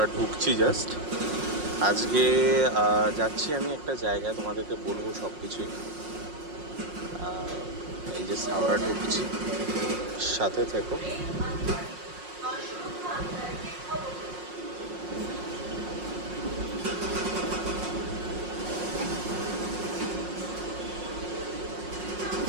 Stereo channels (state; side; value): late; left; 5.5 ms